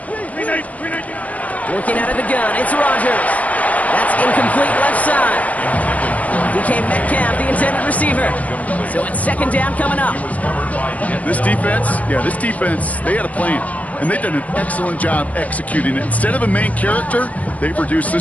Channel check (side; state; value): right; late; 0.070 ms